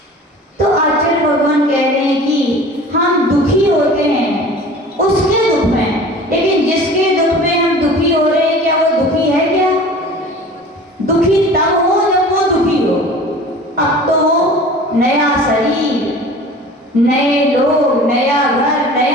तो आचार्य भगवान कह रहे हैं कि हम दुखी होते हैं उसके दुख में, लेकिन जिसके दुख में हम दुखी हो रहे हैं क्या वो दुखी है क्या। दुखी तब हो जब वो दुखी हो। अब तो वो नया शरीर, नए लोग, नया घर,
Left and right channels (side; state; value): both; normal; correlation 0.42